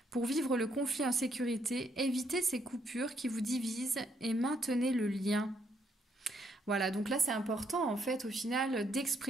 Pour vivre le conflit en sécurité, évitez ces coupures qui vous divisent et maintenez le lien. Voilà, donc là c'est important en fait au final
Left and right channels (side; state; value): both; normal; correlation 0.73